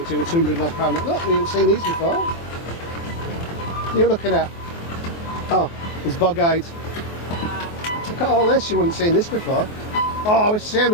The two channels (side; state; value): right; late; 24 ms